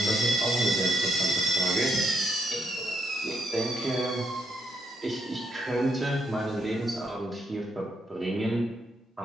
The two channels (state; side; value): normal; both; correlation 0.76